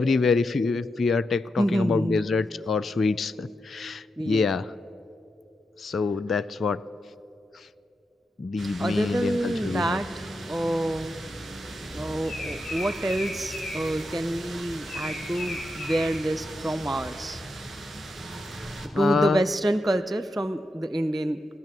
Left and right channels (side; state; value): both; normal; correlation 0.86